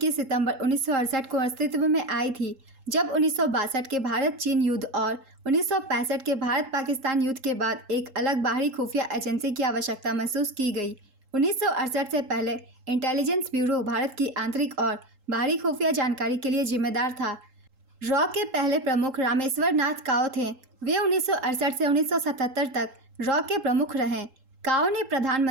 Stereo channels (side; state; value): left; late; 3.8 ms